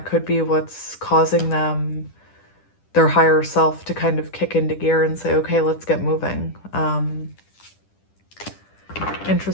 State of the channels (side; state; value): right; late; 10 ms